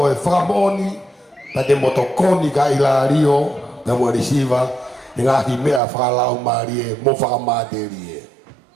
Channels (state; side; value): drops out; left; at 5.8 s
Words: whakamooni ta te motokoni ka Ilario te mo resiva e ngahi mea whakalau maari e mo whakamāteri e.